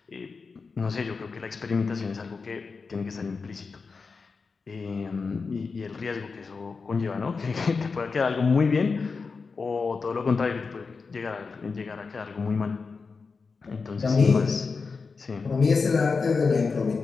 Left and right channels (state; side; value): quieter; right; 4.7 dB